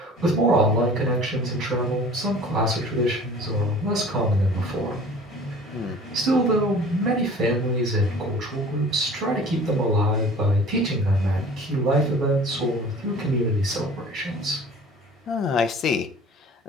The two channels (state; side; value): normal; both; correlation 0.46